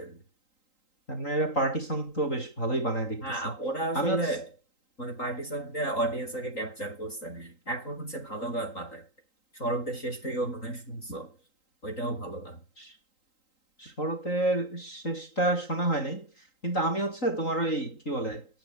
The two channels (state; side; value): late; right; 3.8 ms